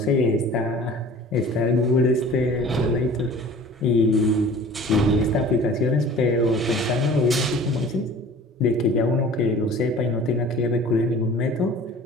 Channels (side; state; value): both; normal; correlation 0.45